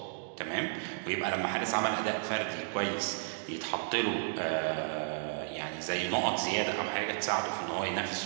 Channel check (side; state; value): left; silent; digital silence